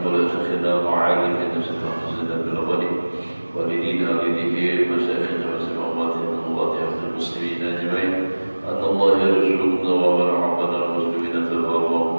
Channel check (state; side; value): inverted; both; correlation -1.00